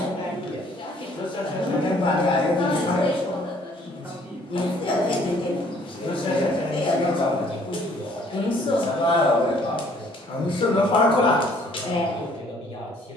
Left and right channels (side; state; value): both; normal; correlation 0.60